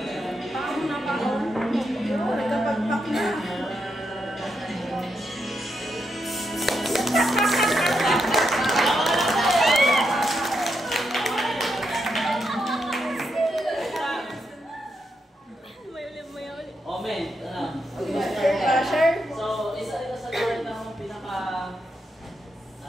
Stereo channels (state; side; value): normal; both; correlation 0.82